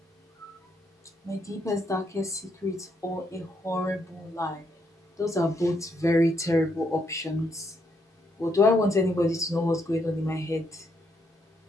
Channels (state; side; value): normal; both; correlation 0.76